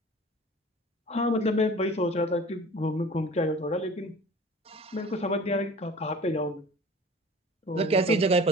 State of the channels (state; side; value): normal; both; correlation 0.43